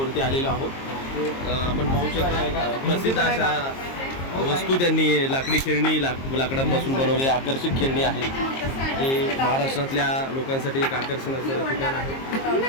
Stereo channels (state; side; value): late; right; 22 ms